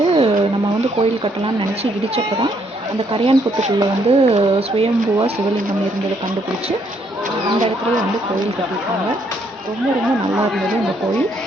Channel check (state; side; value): normal; both; correlation 0.71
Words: நம்ம கோயில் கட்டலாம்னு நினச்சி இடித்தப்போ தான் அந்த கரையான் புத்துக்குள்ளே சுயம்புவாக சிவலிங்கம் இருந்ததை கண்டுபிடிச்சி அந்த இடத்துலையே கோயில் கட்டியிருக்காங்க. ரொம்ப ரொம்ப நல்லா இருந்தது இந்த கோயில்.